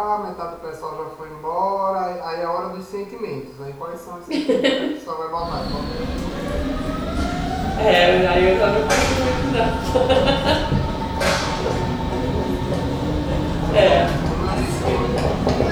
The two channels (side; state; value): both; identical; correlation 1.00